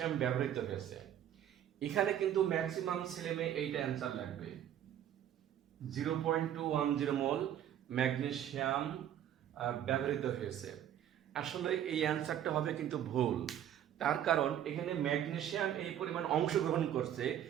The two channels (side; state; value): left; quieter; 10.6 dB